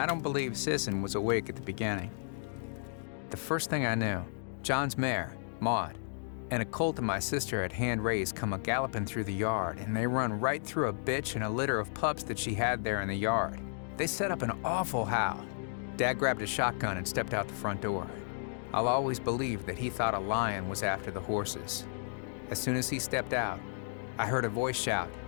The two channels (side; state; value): right; silent; digital silence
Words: don't believe Sisson was awake at the beginning. The first thing I knew, John's mare, Maud, and a colt that my sister had hand-raised come a-galloping through the yard, and they run right through a bitch and a litter of pups that she had there in the yard. They set up an awful howl. Dad grabbed a shotgun and stepped out the front door. I'll always believe that he thought a lion was after the horses. As soon as he stepped out, I heard a voice shout,